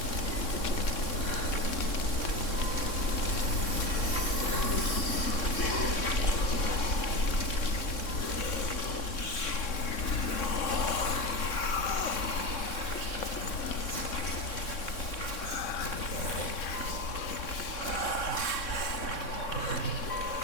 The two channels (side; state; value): right; late; 3.6 ms